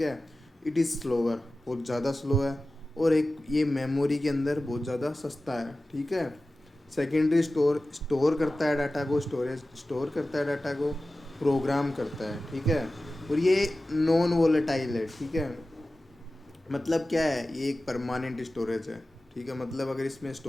है। इट इज़ स्लोअर, बहुत ज़्यादा स्लो है। और एक ये मेमोरी के अंदर बहुत ज़्यादा सस्ता है। ठीक है। सेकेंडरी स्टोर स्टोर करता है डाटा को, स्टोरेज स्टोर करता है डाटा को, प्रोग्राम करता है। ठीक है। और ये नॉन वोलेटाइल है। ठीक है। मतलब क्या है? ये एक परमानेंट स्टोरेज है। ठीक है। मतलब अगर इसमें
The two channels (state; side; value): normal; both; correlation 0.95